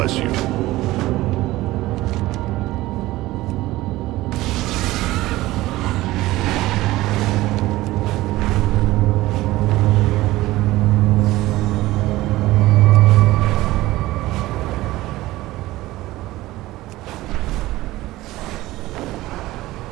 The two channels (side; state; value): left; quieter; 17.5 dB